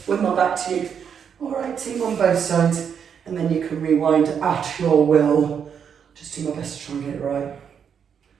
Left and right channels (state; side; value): quieter; left; 7.5 dB